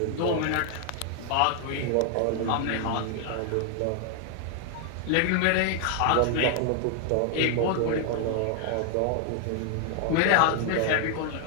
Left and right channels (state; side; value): different; both; correlation 0.00